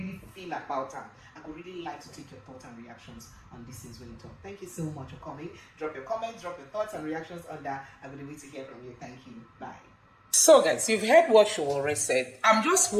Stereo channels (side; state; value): both; identical; correlation 1.00